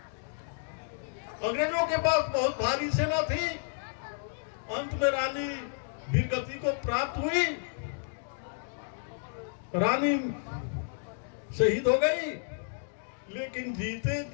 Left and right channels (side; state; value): right; silent; digital silence